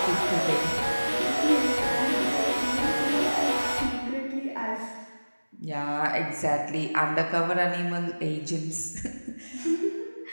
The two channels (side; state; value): both; inverted; correlation -1.00